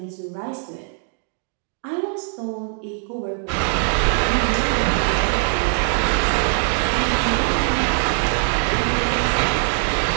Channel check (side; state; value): left; silent; 56 dB below the other